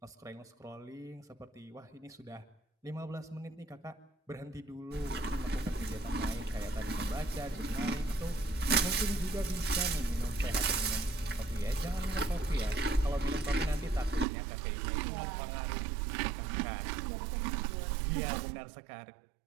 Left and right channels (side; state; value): left; drops out; at 14.2 s